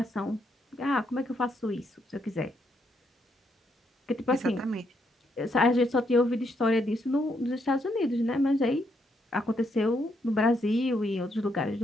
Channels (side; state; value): both; normal; correlation 0.76